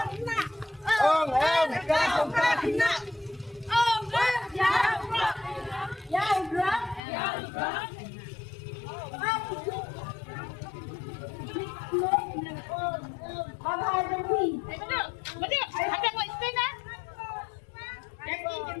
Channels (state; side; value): drops out; right; at 7.0 s